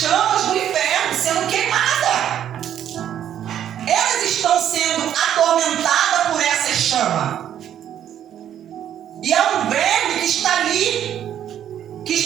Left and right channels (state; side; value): quieter; left; 10.3 dB